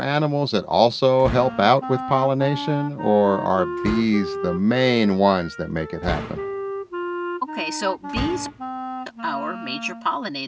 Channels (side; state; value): both; identical; correlation 1.00